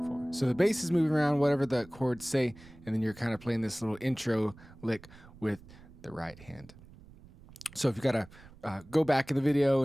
4. So the bass is moving around whatever the chords say, and then you're kind of playing this little intro lick with the right hand. So if you got to go back in the video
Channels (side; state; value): right; noise; rumble, 21 dB below the sound